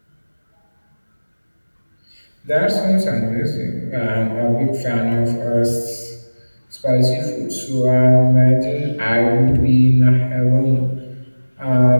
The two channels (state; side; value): inverted; both; correlation -1.00